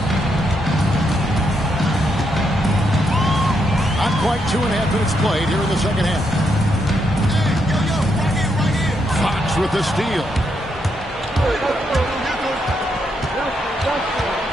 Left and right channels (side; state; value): both; normal; correlation 0.79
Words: Not quite 2.5 minutes played here in the second half. Fox with the steal.